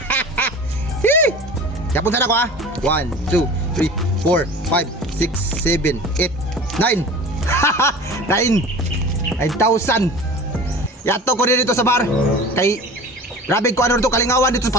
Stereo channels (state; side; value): normal; both; correlation 0.38